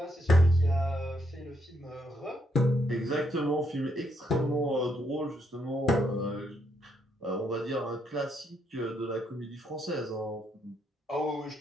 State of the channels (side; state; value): both; normal; correlation 0.76